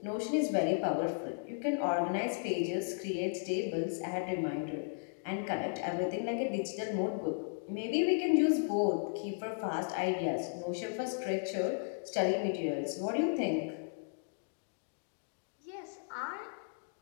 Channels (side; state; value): right; silent; digital silence